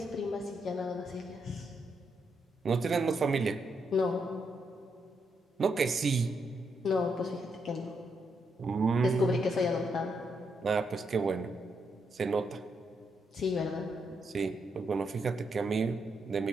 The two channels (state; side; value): normal; both; correlation 0.80